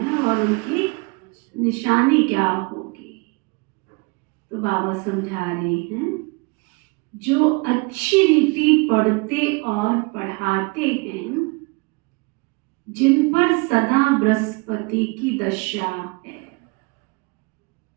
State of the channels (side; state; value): left; quieter; 29.1 dB